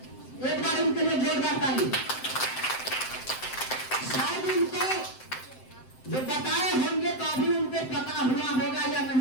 एक बार इनके लिए जोरदार ताली। शायद इनको जो बताए होंगे तो अभी उनको पता हुआ होगा या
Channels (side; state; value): right; late; 7.7 ms